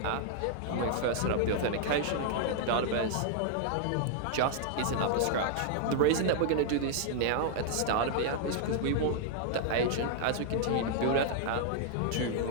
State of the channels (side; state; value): both; different; correlation -0.01